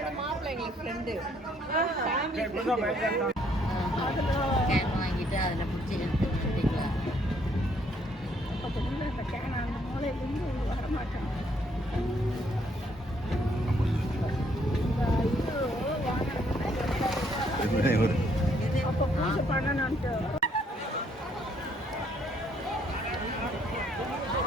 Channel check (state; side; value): normal; both; correlation 0.68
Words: மாப்பிள்ளை எங்களுக்கு ஃப்ரெண்டு. கேன் வாங்கிட்டு அதில் பிடிச்சி எடுத்து விட்டுக்கலாம். அந்த கேன் அந்த மூலையிலேருந்து வரமாட்டேன். அப்போ பூஜை பண்ணணுன்ட்டு